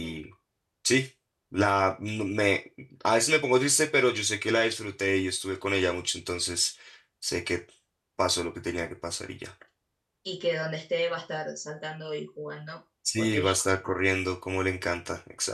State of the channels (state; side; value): identical; both; correlation 1.00